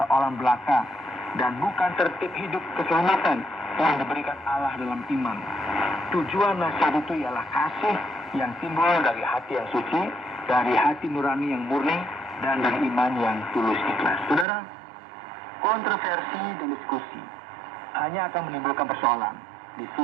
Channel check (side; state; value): left; drops out; at 14.5 s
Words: belaka dan bukan tertib hidup keselamatan yang diberikan Allah dalam iman. Tujuan nasihat itu ialah kasih yang timbul dari hati yang suci, dari hati nurani yang murni, dan dari iman yang tulus ikhlas. Saudara, kontroversi dan diskusi hanya akan menimbulkan persoalan. Di